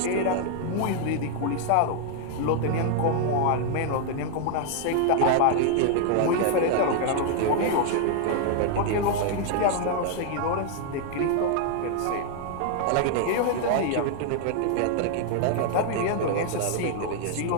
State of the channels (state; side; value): different; both; correlation 0.00